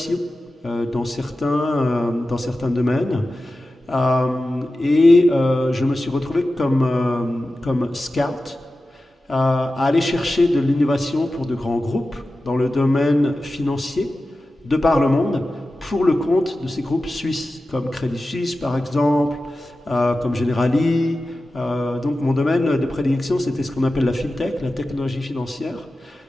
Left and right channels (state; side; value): normal; both; correlation 0.94